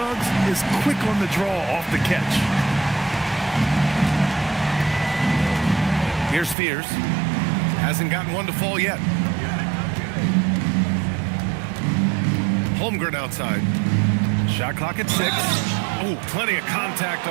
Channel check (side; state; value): left; drops out; at 6.6 s